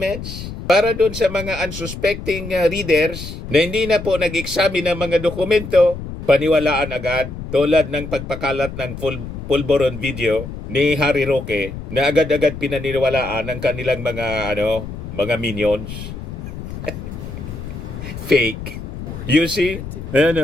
para doon sa mga unsuspecting readers na hindi na po nag-examine ng mga dokumento, paniwalaan agad, tulad ng pagpakalat ng pulboron video ni Harry Roque na agad-agad pinaniwalaan ng kanilang mga mga minions. Fake. You see?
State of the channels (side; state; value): left; noise; rumble, 9 dB below the sound